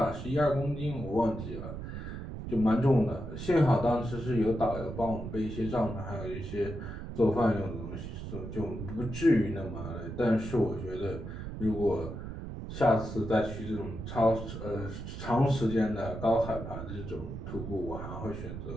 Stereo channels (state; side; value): noise; right; rumble, 8 dB below the sound